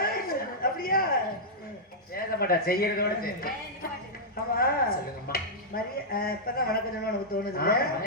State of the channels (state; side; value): normal; both; correlation -0.09